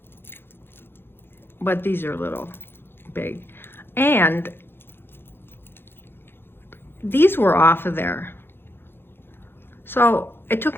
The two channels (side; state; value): right; late; 0.10 ms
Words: but these are a little big. And these were off of there. So it